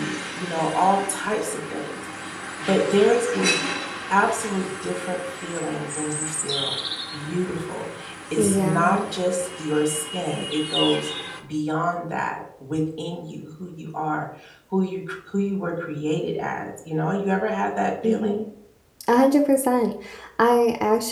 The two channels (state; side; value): identical; both; correlation 1.00